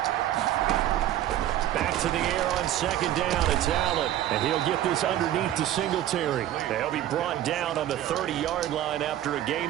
Back to the air on second down. It's Allen. And he'll get this underneath to Singletary. They'll be brought down on the 30-yard line after a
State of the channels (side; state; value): left; quieter; 12.6 dB